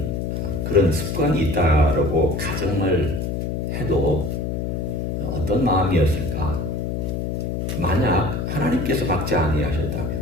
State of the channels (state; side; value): noise; left; hum, 2 dB below the sound